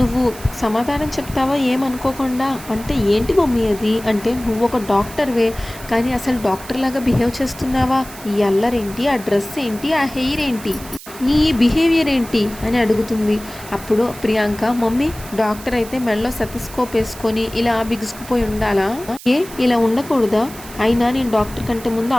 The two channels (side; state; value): right; noise; hiss, 16 dB below the sound